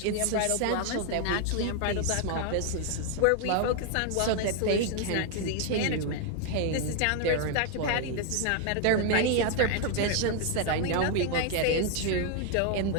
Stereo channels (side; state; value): both; different; correlation 0.00